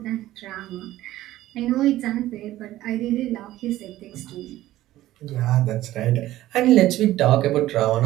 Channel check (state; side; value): quieter; left; 15.1 dB